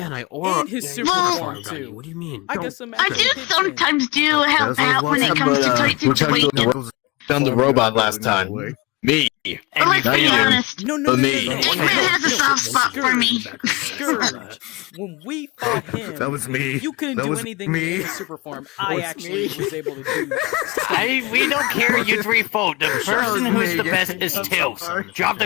and I or And his yeah, super you put a form, farm gun, too. What do you mean? I got some I actual do kitchen. sometimes do help As I was out when it watching, comes to but, tight which I situations. don't Found the robot last time. Me. But let's Now be you do. honest. No, no, For no, me. no, no. Eggman has a soft spot for me. Scourge. When we fought him, That was me. you couldn't That do was anything me. in his super form. I was actually me. was able to do. We don't care you 3 vote. The person was who's me. the best is I'm so Tails. sorry. Drop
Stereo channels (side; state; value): right; quieter; 23.6 dB